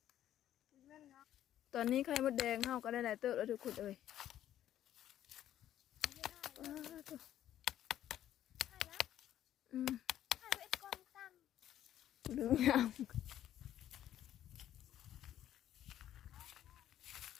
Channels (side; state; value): right; quieter; 11.7 dB